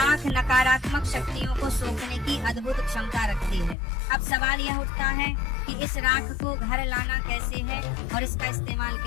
नकारात्मक शक्तियों को सोखने की अद्भुत क्षमता रखती है। अब सवाल यह उठता है कि इस राख को घर लाना कैसे है और इसका इस्तेमाल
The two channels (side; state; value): right; drops out; at 3.8 s